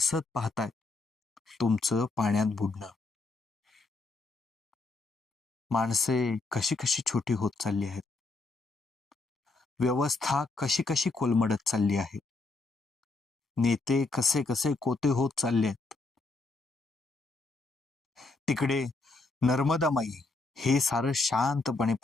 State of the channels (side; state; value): right; quieter; 3.5 dB